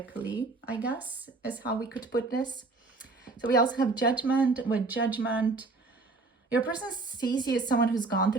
I guess, is how we could put this. So we also have Judgment. With Judgment, your person sees you as someone who's gone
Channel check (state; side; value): quieter; left; 3.6 dB